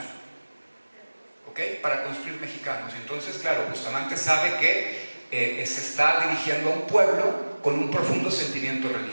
¿Ok? Para construir mexicanos. Entonces, claro, Bustamante sabe que se está dirigiendo a un pueblo con un profundo sentimiento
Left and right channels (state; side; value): inverted; both; correlation -1.00